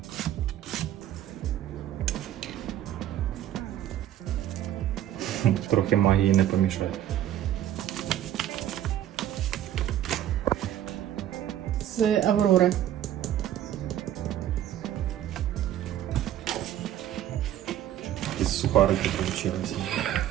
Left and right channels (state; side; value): quieter; left; 11.8 dB